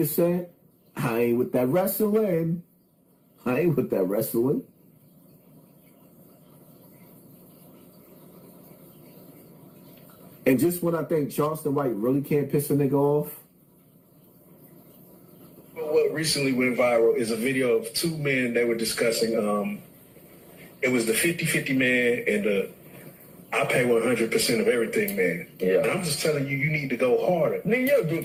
said? I ain't with that wrestling. I ain't with that wrestling. And just when I think Charleston White really can't piss a nigga off. What recently went viral is a video of two men that were discussing, it was the 50-50 man and the I pay 100% of everything, man. Yeah. And I'm just telling you, you need to go harder. Nigga, your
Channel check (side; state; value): both; identical; correlation 1.00